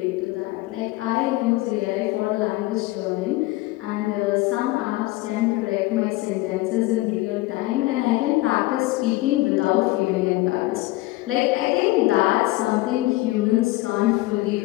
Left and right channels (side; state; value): right; quieter; 19.8 dB